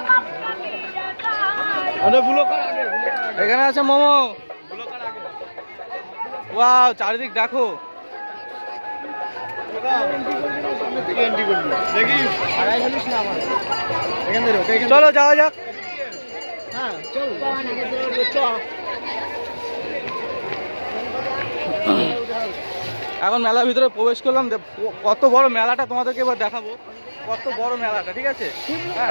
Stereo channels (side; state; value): both; inverted; correlation -1.00